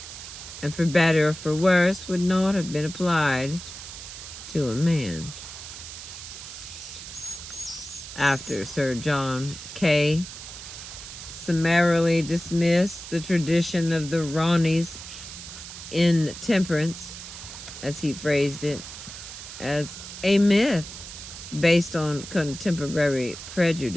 and for better or for worse would not have been applied to a man. After Sir John Kay summarily dismissed the tradition of the RANI's intemperance, as he phrased it, as a myth based on contemporary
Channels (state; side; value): noise; right; hiss, 12 dB below the sound